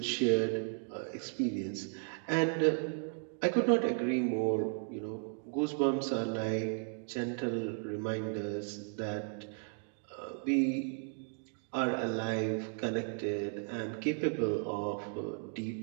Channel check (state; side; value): silent; left; 54 dB below the other